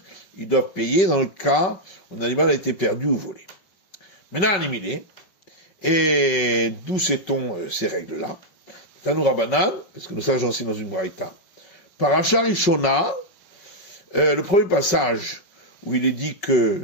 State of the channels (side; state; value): right; late; 5.4 ms